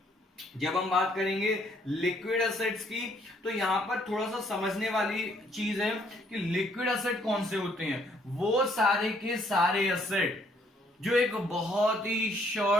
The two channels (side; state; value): both; normal; correlation 0.66